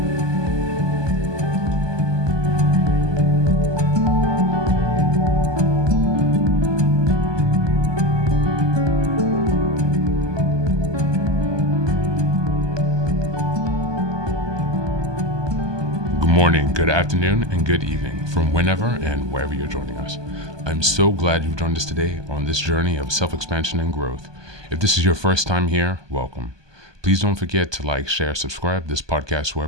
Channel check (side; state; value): left; late; 1.2 ms